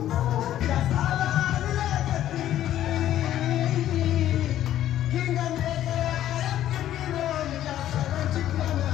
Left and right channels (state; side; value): quieter; right; 12.2 dB